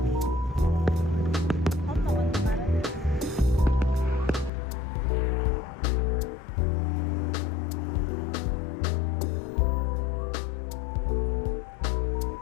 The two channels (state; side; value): drops out; right; at 4.5 s